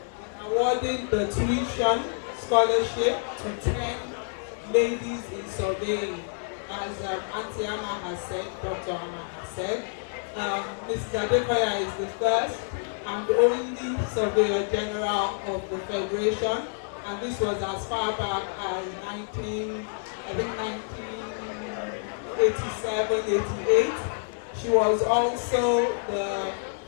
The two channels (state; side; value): silent; right; digital silence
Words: awarding the tuition scholarship to 10 ladies in surveying. As Auntie Amma has said, Dr. Amma has said, Mrs. Adekoya is the first and only Surveyor General of the Federation, and this was as far back as 1987, 88. She was also the